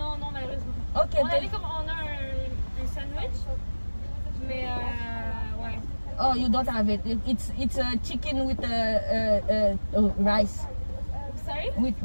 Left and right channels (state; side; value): inverted; both; correlation -1.00